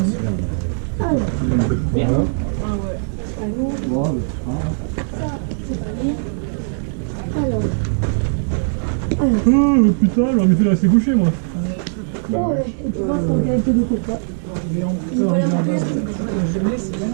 Alors. Merde. Ah ouais. C'est pas lourd. Ça, c'est pas lourd. Alors. Oh putain, j'aurais mieux fait de rester couché moi. Oh ouais, et tu vois, c'est en qualité de coca. Il va la remplir.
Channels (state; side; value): silent; left; 62 dB below the other